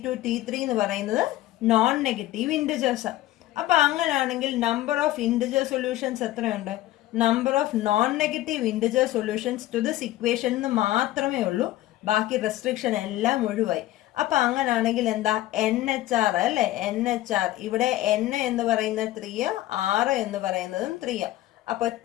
T3 എന്ന് പറയുന്നത് നോൺ നെഗറ്റീവ് ഇൻറ്റിജേഴ്സ്. അപ്പൊ അങ്ങനെയാണെങ്കിൽ നമ്പർ ഓഫ് ഇൻറ്റിജർ സൊല്യൂഷൻസ് എത്രയുണ്ട്? Number of non negative integer solutions to this equation എന്ന് മാത്രമേ ഉള്ളൂ, ബാക്കി റെസ്ട്രിക്ഷൻ എല്ലാം ഒഴിവായി. അപ്പൊ അങ്ങനെയാണെങ്കിൽ എന്താ? NHR അല്ലെ, NHR. ഇവിടെ N എന്ന് പറയുന്നത് 3, R എന്ന് പറയുന്നതും 3. അപ്പൊ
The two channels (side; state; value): right; quieter; 15.4 dB